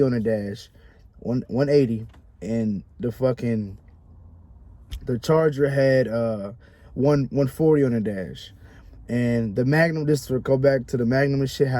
on the dash, 180, and the Charger had 140 on the dash. And the Magnum, just to go back to the Magnum and shit,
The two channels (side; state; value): both; identical; correlation 1.00